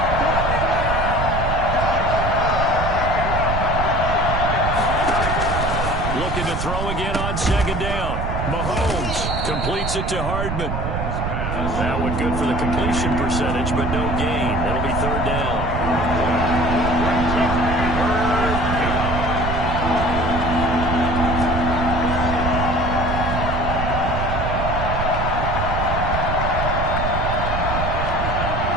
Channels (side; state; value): right; noise; rumble, 2 dB below the sound